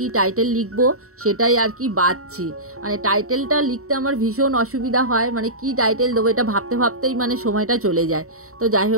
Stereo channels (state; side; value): late; left; 0.64 ms